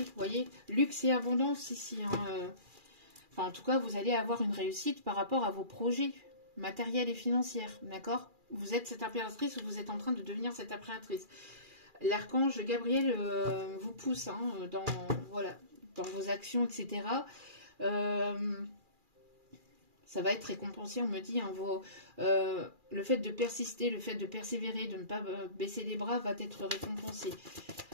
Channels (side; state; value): left; late; 2.4 ms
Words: voyez, luxe et abondance ici. Hein, Enfin, en tout cas, vous allez avoir une réussite par rapport à vos projets matériels et financiers. D'accord ? Vous êtes cette impératrice ou vous êtes en train de devenir cette impératrice. L'archange Gabriel vous pousse dans vos actions, etc. Ça va être récompensé, on me dit. Le fait de persister, le fait de persévérer, de ne pas baisser les bras va être récompensé.